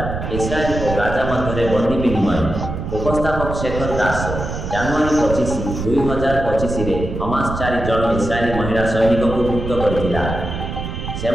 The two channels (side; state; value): right; noise; rumble, 5 dB below the sound